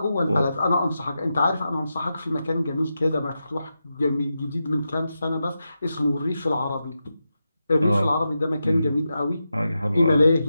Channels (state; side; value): inverted; both; correlation -0.89